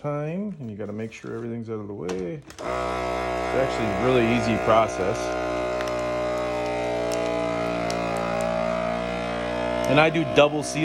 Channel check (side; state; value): both; identical; correlation 1.00